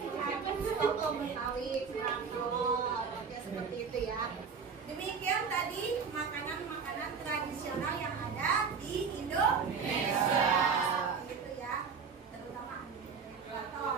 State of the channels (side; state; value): left; quieter; 5.8 dB